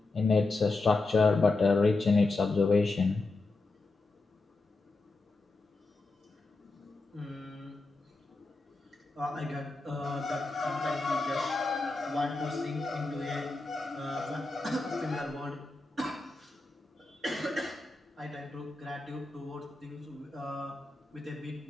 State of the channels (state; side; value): quieter; right; 3.3 dB